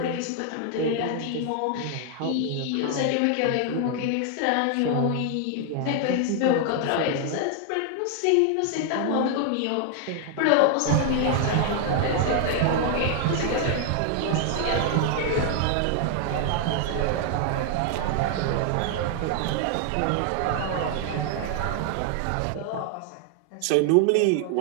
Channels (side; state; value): both; different; correlation 0.00